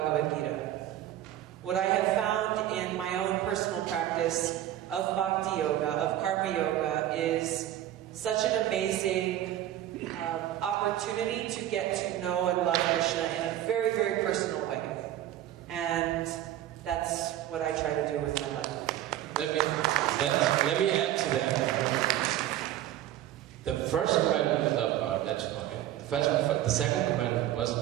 Gita. What I have found in my own personal practice of Bhakti Yoga, of Karma Yoga, is such an amazing opportunity to get to know and love Krishna in a very, very personal way. And that's what I try to do with my life. Let me add to that. The first commandment was love God, that's fine. The second commandment was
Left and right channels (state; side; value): quieter; left; 12.8 dB